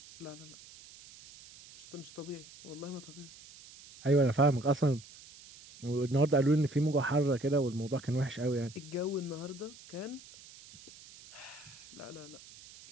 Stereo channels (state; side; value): noise; right; hiss, 19 dB below the sound